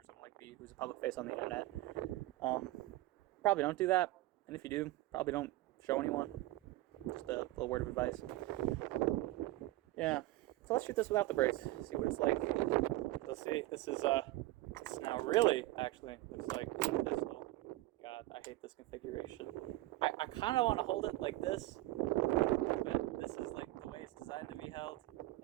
someone like me who's a public face on the internet. Probably don't do that, and if you do, probably don't show anyone. Just a little word of advice. Yeah, so let's shoot this without the brace, see what it's like. Let's see, this is now really, actually, looks like a pistol. God, I hate this configuration. I kind of want to hold it like this, but this is like the way it's designed to be held.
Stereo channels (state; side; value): quieter; left; 18.2 dB